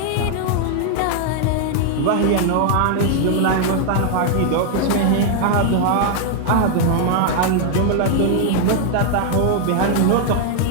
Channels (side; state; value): both; different; correlation 0.00